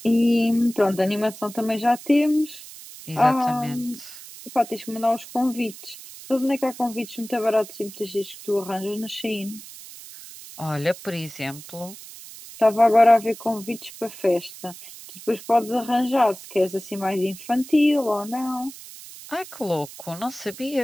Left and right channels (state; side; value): noise; right; hiss, 16 dB below the sound